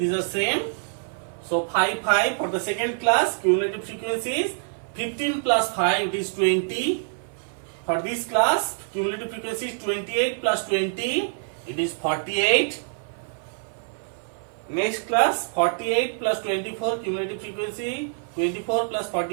are same. So 5 for the second class, cumulative frequency is 15 plus 5, it is 20. For this class, cumulative frequency is 28 plus 20, it is 48. Next class, 48 plus 24, cumulative frequency 24 plus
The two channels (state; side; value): silent; left; 57 dB below the other